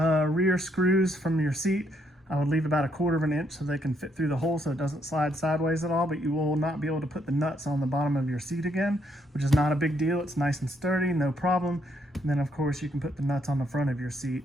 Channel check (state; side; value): normal; both; correlation 0.73